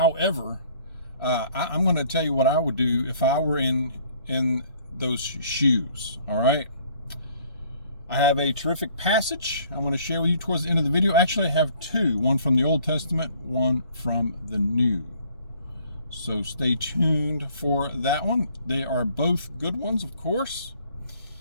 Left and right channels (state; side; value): inverted; both; correlation -0.58